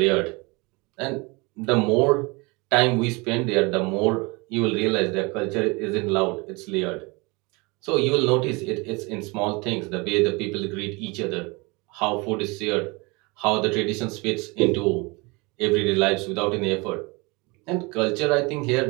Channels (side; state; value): left; quieter; 26.9 dB